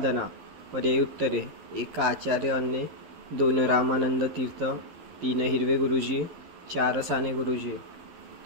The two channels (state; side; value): late; left; 12 ms